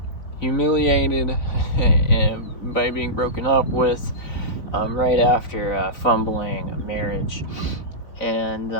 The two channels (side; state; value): right; late; 4.0 ms